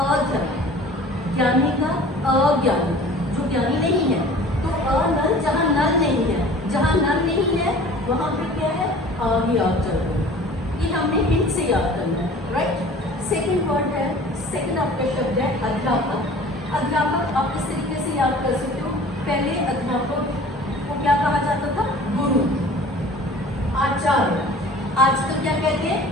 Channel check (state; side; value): normal; both; correlation 0.45